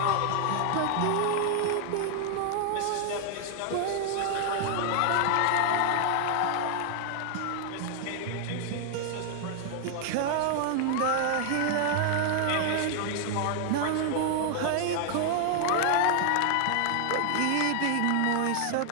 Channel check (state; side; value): different; both; correlation 0.00